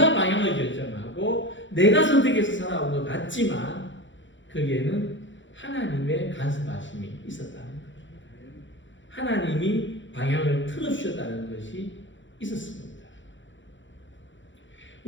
방향을 결정하고 내가 선택해서 살아온 것 같지만 거기에는 하나님의 간섭하심이 있었다는 거예요. 하나님이 방향을 틀어주셨다는 것이 있었습니다.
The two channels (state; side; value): late; right; 0.54 ms